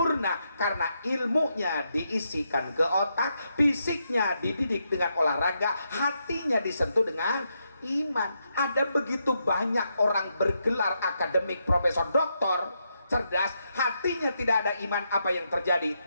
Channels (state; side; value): inverted; both; correlation -0.81